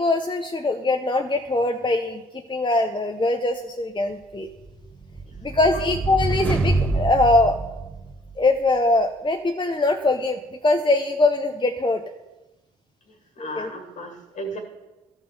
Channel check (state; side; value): normal; both; correlation 0.60